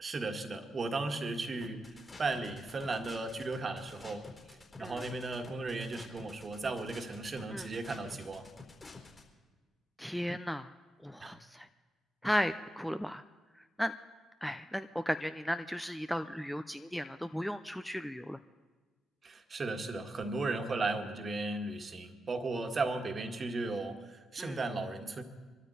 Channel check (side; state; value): both; normal; correlation 0.88